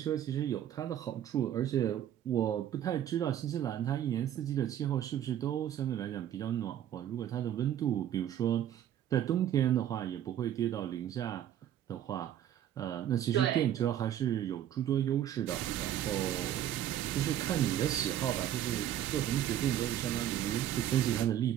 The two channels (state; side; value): quieter; left; 11.1 dB